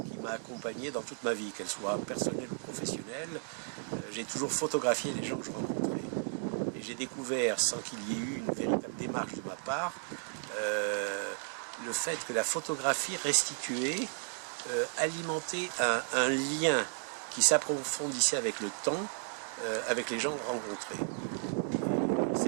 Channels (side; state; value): left; silent; 55 dB below the other